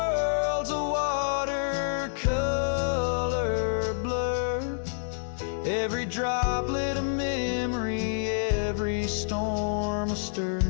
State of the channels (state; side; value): silent; right; 59 dB below the other